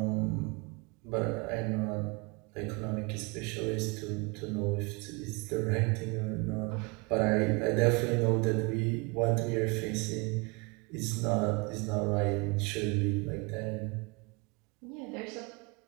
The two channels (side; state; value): left; quieter; 28.9 dB